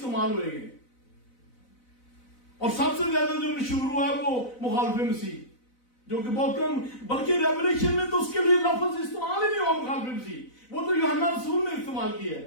हुए गए। और सबसे ज्यादा जो मशहूर हुआ है वो मुखालिफ मसीह, जो कि बहुत कम, बल्कि रेवलेशन में तो उसके लिए लफ्ज इस्तेमाल ही नहीं हुआ मुखालिफ मसीह। वो तो यूहन्ना रसूल ने इस्तेमाल किया है।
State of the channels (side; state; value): right; late; 4.0 ms